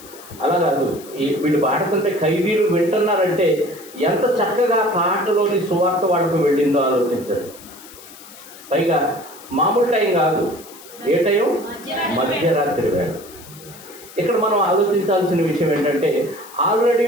అలా కాదు, వీళ్ళు పాడుతుంటే ఖైదీలు వింటున్నారంటే ఎంత చక్కగా పాటలోని సువార్త వాళ్ళకు వెళ్ళిందో ఆలోచించారు. పైగా మామూలు టైం కాదు, ఏ టైం? మధ్యరాత్రి వేళ. ఇక్కడ మనం ఆలోచించాల్సిన విషయం ఏంటంటే ఆల్రెడీ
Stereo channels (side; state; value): left; noise; hiss, 19 dB below the sound